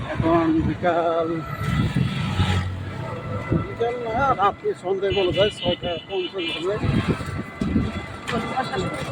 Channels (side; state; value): both; identical; correlation 1.00